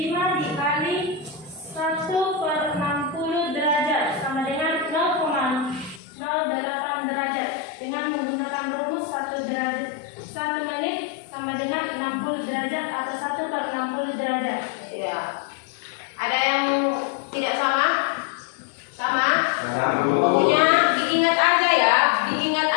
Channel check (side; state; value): right; drops out; at 6.0 s